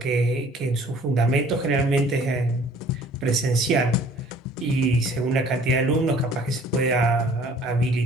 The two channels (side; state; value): both; normal; correlation 0.53